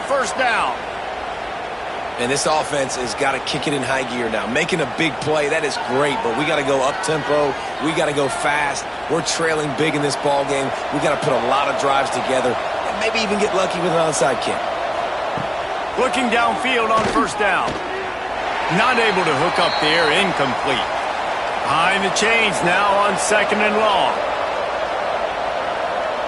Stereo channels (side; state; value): both; identical; correlation 1.00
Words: down. And this offense has got to kick it in high gear now. Making a big play, that is great, but we got to go up-tempo. We got to go fast. We're trailing big in this ball game. We got to put a lot of drives together and maybe even get lucky with an onside kick. Looking downfield on 1st down. Not able to hook up there. Incomplete. Behind the chains now on 2nd and long.